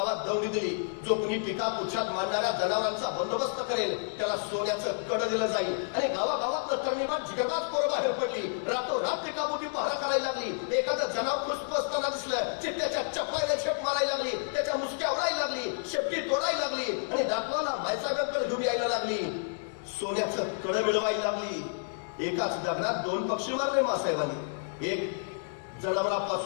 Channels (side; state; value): right; silent; digital silence